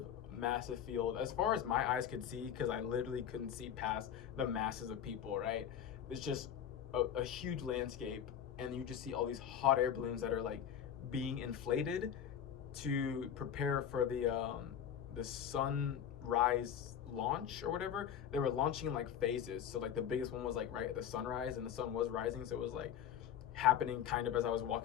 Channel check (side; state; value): right; quieter; 9.2 dB